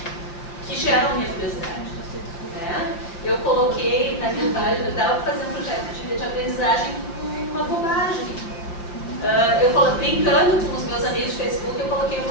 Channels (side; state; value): right; late; 5.9 ms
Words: que geram a minha curiosidade. Eu coloquei naquele página, dava para fazer um projeto de aprendizagem com uma bobagem. Brincando com os meus amigos de Facebook, eu coloquei